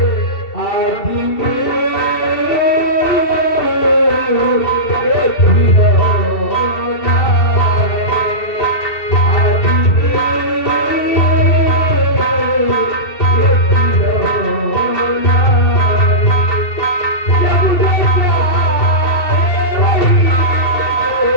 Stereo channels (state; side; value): late; right; 2.7 ms